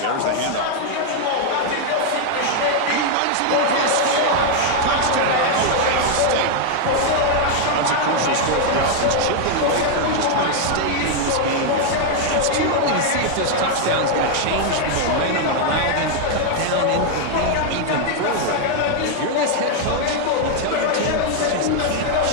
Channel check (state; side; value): different; both; correlation 0.00